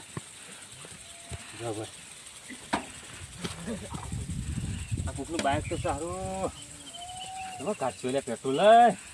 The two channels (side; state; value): both; identical; correlation 1.00